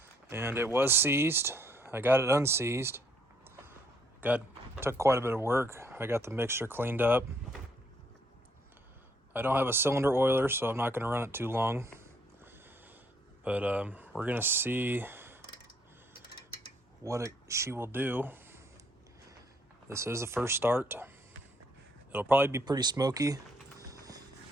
And it was seized. I got it unseized. Took quite a bit of work. I got the mixture cleaned up. I don't have a cylinder oiler, so I'm not going to run it too long. But we're going to see what she will do. This is the first start. It'll probably be pretty smoky,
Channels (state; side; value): normal; both; correlation 0.68